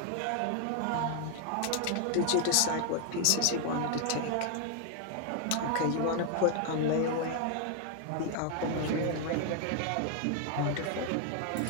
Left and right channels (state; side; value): different; both; correlation 0.00